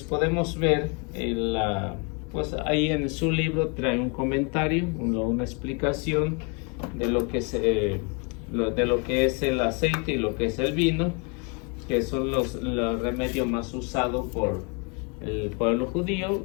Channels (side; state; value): right; quieter; 33.8 dB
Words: podemos ver pues ahí en su libro trae un comentario, una explicación de lo que es el aceite y lo que es el vino, que son los remedios más usados por el pueblo judío,